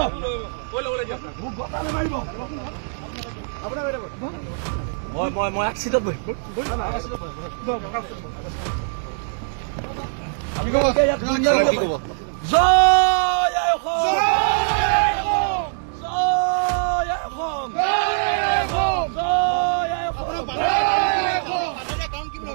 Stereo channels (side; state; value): left; silent; digital silence